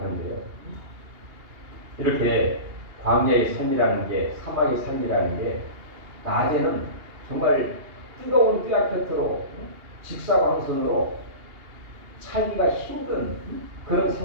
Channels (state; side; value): late; left; 2.8 ms